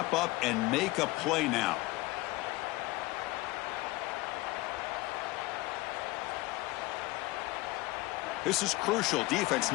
up and make a play now. This is crucial. Defense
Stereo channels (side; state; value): right; quieter; 20.6 dB